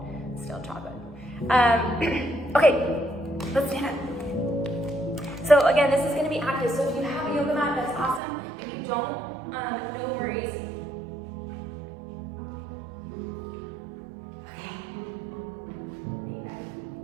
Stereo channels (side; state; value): left; drops out; at 8.2 s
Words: stale chocolate. Okay, let's stand up. So again, this is going to be active. So if you have a yoga mat, that's awesome. If you don't, no worries.